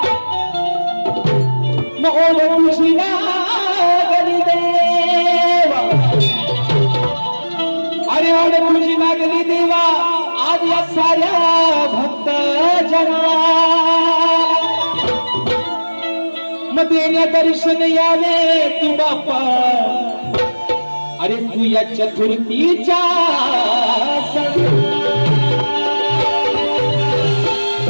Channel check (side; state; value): both; inverted; correlation -1.00